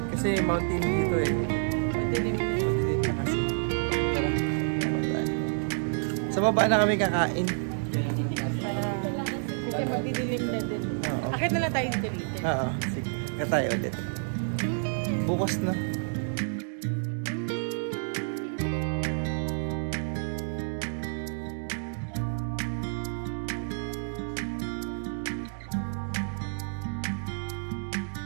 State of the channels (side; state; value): left; silent; digital silence